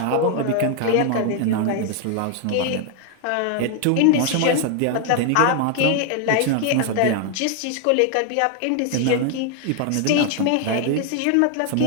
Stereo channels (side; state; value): both; different; correlation 0.00